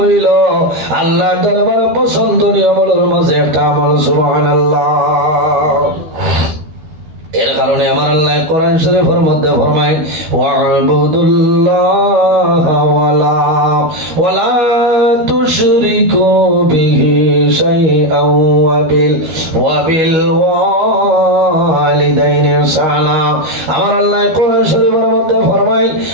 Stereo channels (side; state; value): left; late; 12 ms